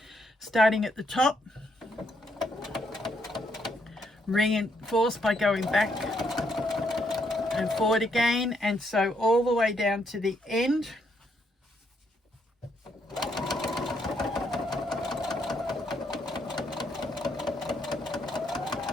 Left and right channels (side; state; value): both; normal; correlation 0.75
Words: Starting at the top, reinforce by going back and forward again, and sew all the way down to the end.